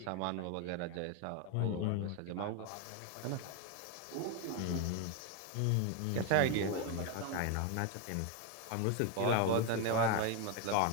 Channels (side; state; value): both; different; correlation 0.01